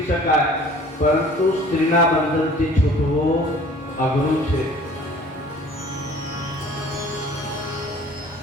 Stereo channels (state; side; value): normal; both; correlation 0.49